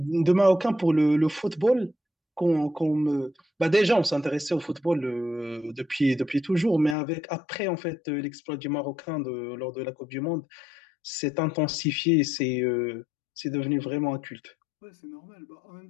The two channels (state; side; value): drops out; right; at 7.0 s